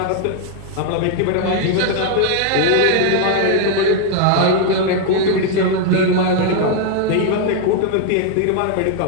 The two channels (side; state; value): both; different; correlation 0.00